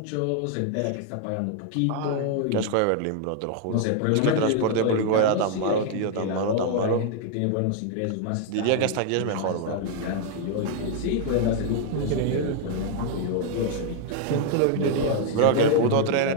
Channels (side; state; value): both; different; correlation 0.00